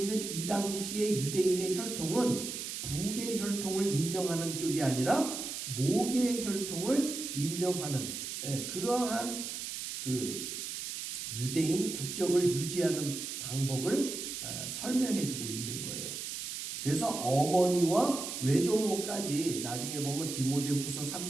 이 당시의 유대인의 혈통은 북의 혈통을 인정하는 쪽이 아니라 목의 혈통을 인정하는 그러한 그 유대인 국적을 유지하는 방법을 설명해주고 있는 거예요. 그래서 어머니와 외조모까지 나중에 보면 디모데후서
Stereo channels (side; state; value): right; noise; hiss, 6 dB below the sound